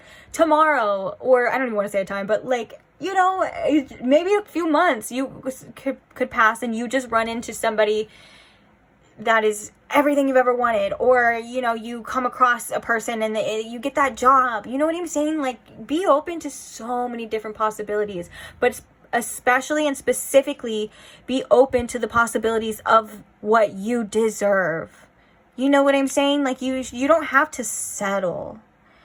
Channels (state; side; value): identical; both; correlation 1.00